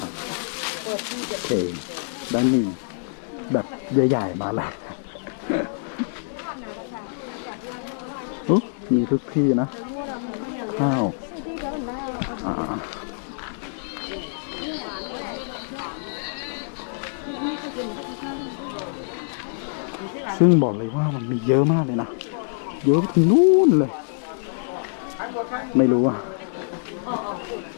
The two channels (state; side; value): silent; right; digital silence